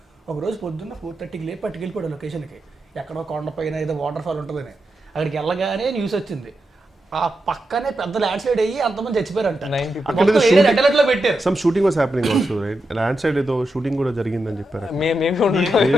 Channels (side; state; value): both; normal; correlation 0.87